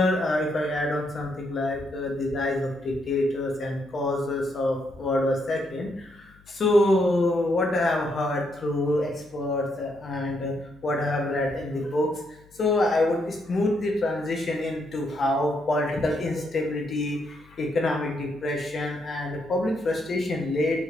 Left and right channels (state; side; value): noise; left; hum, 27 dB below the sound